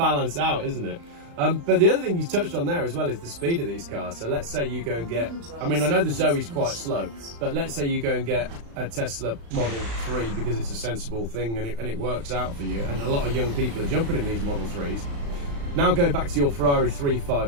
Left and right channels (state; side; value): late; left; 35 ms